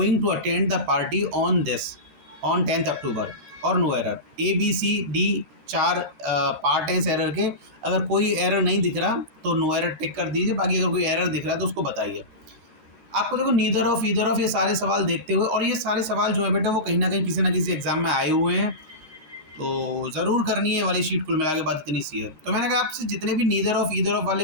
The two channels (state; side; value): late; left; 13 ms